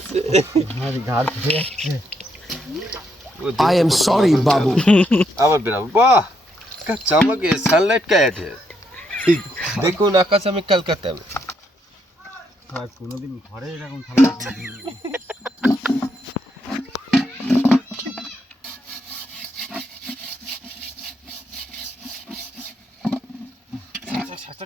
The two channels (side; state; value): both; normal; correlation 0.76